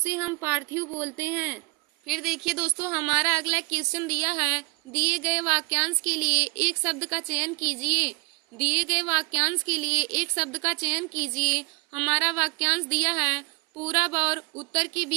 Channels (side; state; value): left; quieter; 28.6 dB